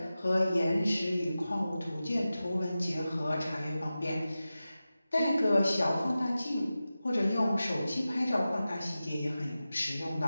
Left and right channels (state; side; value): inverted; both; correlation -0.94